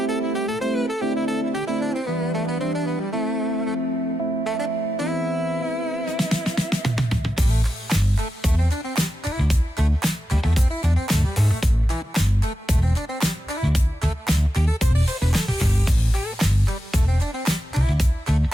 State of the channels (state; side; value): normal; both; correlation 0.88